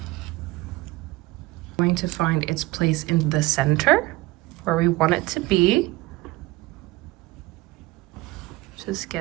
Going to find its place in the center where we want it to be. Just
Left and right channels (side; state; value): left; quieter; 19.4 dB